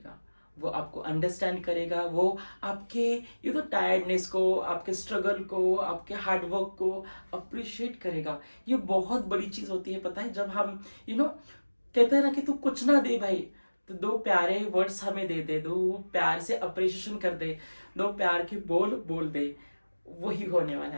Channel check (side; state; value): both; inverted; correlation -1.00